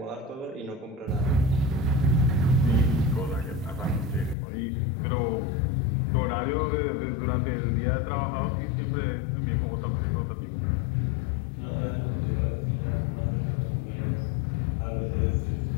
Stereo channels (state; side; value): drops out; right; at 4.4 s